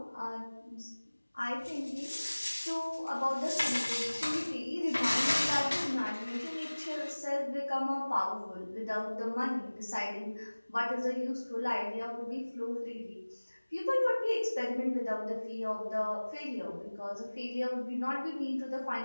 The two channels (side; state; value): both; inverted; correlation -1.00